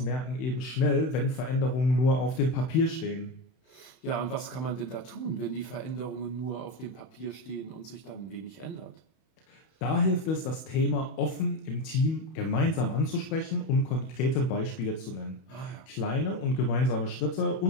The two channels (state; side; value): late; right; 31 ms